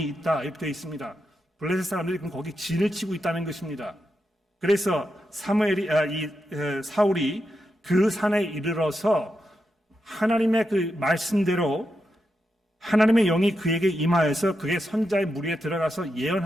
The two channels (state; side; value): normal; both; correlation 0.86